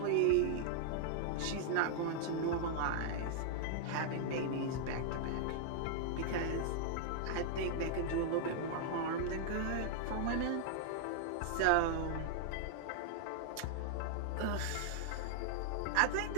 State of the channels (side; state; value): both; different; correlation -0.01